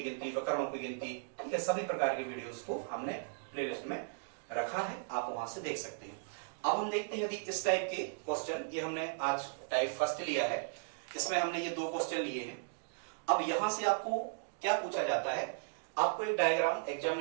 गिनती, विकर्णों की गिनती, ठीक है, सभी प्रकार की वीडियोस को हमने प्लेलिस्ट में रखा है, आप वहां से देख सकते हैं। अब हम देखते हैं यदि इस टाइप के क्वेश्चन, ये हमने आज टाइप फर्स्ट लिया है, इसमें हमने ये 2 क्वेश्चन लिए हैं। अब यहां से आपको क्या पूछा जाता है, आपको एक डायग्राम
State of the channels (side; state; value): left; silent; digital silence